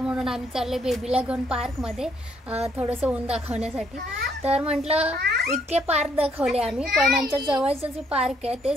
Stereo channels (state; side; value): normal; both; correlation 0.70